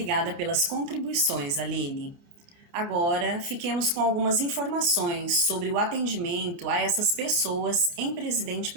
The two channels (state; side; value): late; left; 29 ms